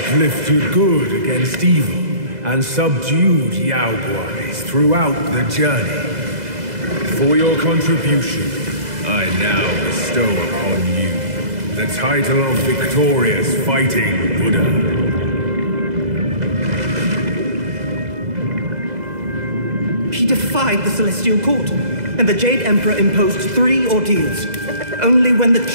good against evil, and subdued Yaoguais throughout the journey. For your contribution, I now bestow upon you the title of Victorious Fighting Buddha. He defied the Celestial Court, and the Jade Emperor imposed 3 ordeals. Only when the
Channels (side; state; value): left; late; 2.0 ms